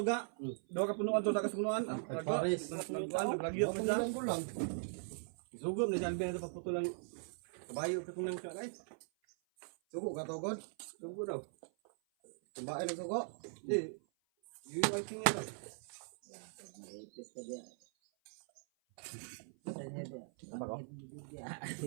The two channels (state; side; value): silent; left; 51 dB below the other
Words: ga. Daw ka punuan to sa kasunuan. Paris. Nagkuan lagi ako sa. Ko lang. Sugom na Alvin ito paputulan. Kabayo ka tunang ka guys. Sugo ka to god. Sugo daw. Kumbain ang sugo. Di. Yung ay tingin daw.